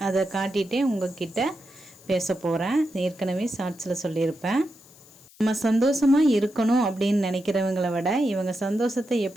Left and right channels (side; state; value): left; noise; hiss, 25 dB below the sound